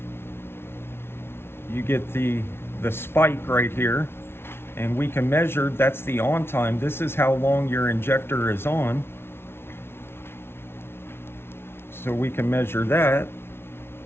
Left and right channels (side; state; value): right; late; 0.12 ms